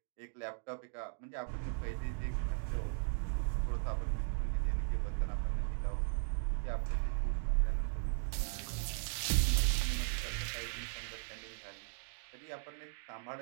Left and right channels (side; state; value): left; silent; digital silence